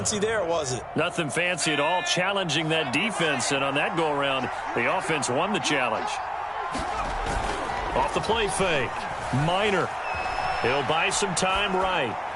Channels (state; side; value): identical; both; correlation 1.00